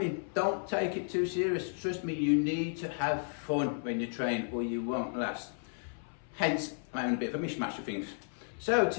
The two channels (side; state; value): right; silent; 56 dB below the other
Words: Don't take it too serious. Trust me, you need to have fun when you train or you won't last. Hence, I'm having a bit of a mishmash of things. So